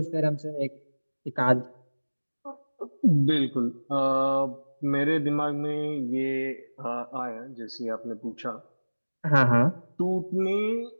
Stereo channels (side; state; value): both; inverted; correlation -1.00